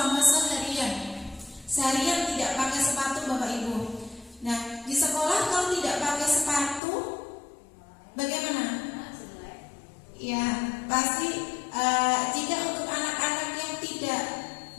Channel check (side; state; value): right; drops out; at 6.8 s